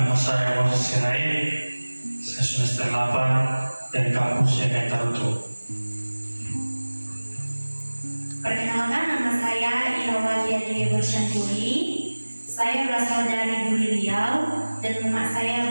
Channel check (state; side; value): inverted; both; correlation -1.00